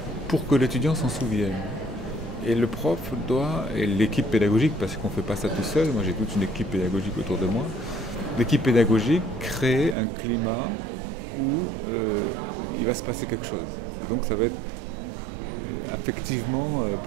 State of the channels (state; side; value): drops out; left; at 10.0 s